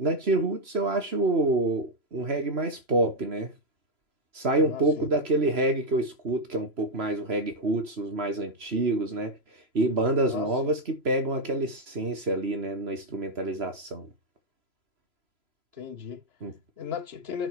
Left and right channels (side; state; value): left; late; 3.0 ms